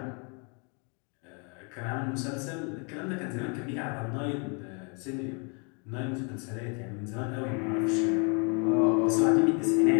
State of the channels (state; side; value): quieter; right; 35.7 dB